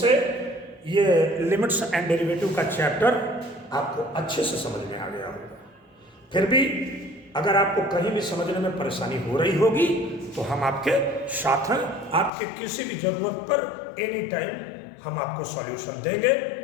ये लिमिट्स एंड डेरिवेटिव का चैप्टर आपको अच्छे से समझ में आ गया होगा। फिर भी अगर आपको कहीं भी समझने में परेशानी हो रही होगी तो हम आपके साथ हैं। आपके किसी भी जरूरत पर एनी टाइम हम आपको सॉल्यूशन देंगे।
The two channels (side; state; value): right; drops out; at 12.3 s